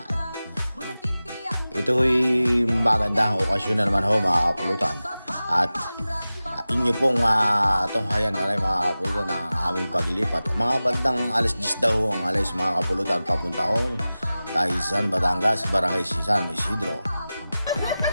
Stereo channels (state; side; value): inverted; both; correlation -0.96